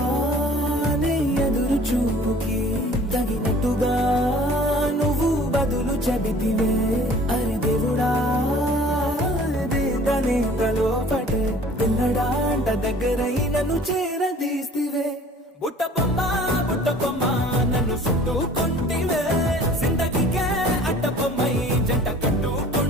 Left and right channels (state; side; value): normal; both; correlation 0.49